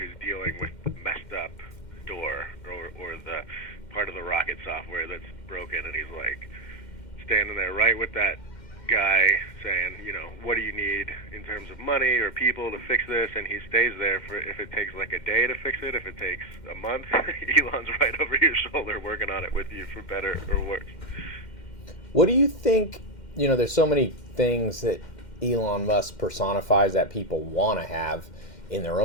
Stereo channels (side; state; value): right; late; 2.1 ms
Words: dealing with the messed up door or the part of the rocket software that's broken, and he's like standing there right with that guy saying, you know, what do you need in terms of money or people to fix this? And he stays there for, if it takes like a day to fix it, if it takes a month, Elon's right over your shoulder working on it with you for better or worse. What do you think? You know, there's so many things that Elon Musk personifies that people want to have in their